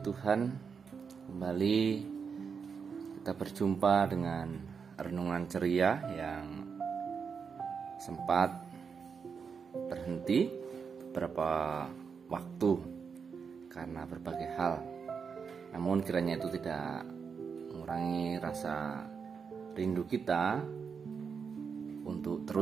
Tuhan. Kembali kita berjumpa dengan renungan ceria yang sempat berhenti beberapa waktu karena berbagai hal. Namun kiranya itu tidak mengurangi rasa rindu kita untuk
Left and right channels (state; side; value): quieter; left; 6.0 dB